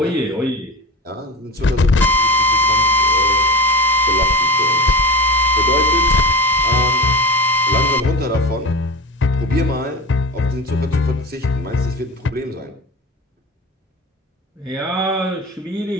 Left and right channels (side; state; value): both; normal; correlation 0.26